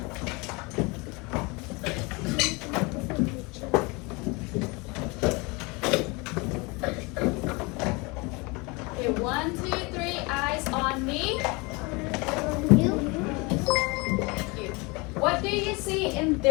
Okay, 1, 2, 3, eyes on me. Thank you. What do you see in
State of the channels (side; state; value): right; quieter; 27.0 dB